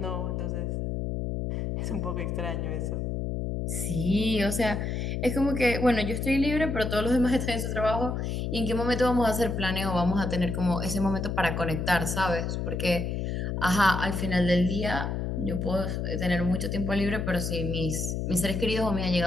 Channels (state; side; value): noise; left; hum, 2 dB below the sound